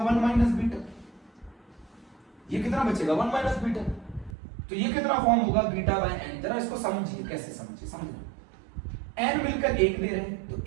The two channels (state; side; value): drops out; left; at 4.4 s